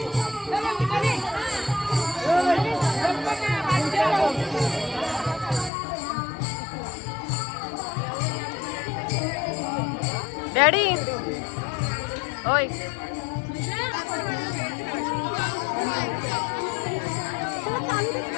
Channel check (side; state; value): right; drops out; at 5.7 s